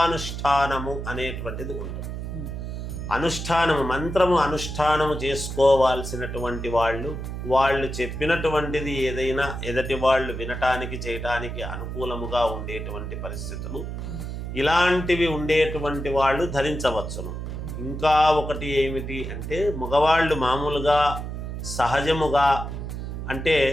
అనేటువంటిది ఉంటుంది. అనుష్ఠానము, మంత్రము అనుష్ఠానము చేసుకోవాల్సినటువంటి వాళ్ళు చెప్పినటువంటిది ఏదైనా ఎదటి వాళ్ళు వినటానికి చేయటానికి అనుకూలముగా ఉండేటువంటి పరిస్థితులు ఇలాంటివి ఉండేటువంటి వాళ్ళు ధరించవచ్చును. ఇంకా ఒకటి ఏమిటి అంటే, మగవాళ్ళు మామూలుగా సహజముగా అంటే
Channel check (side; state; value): right; noise; hum, 6 dB below the sound